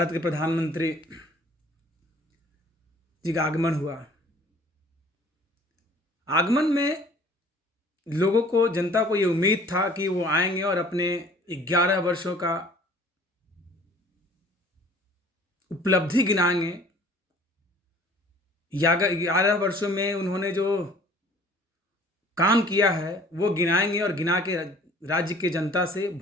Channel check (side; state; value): both; normal; correlation 0.51